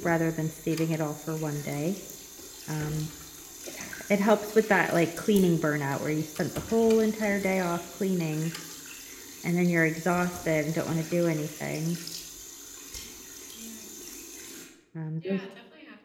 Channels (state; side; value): identical; both; correlation 1.00